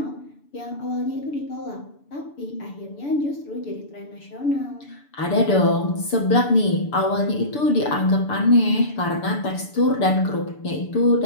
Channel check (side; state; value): right; late; 6.9 ms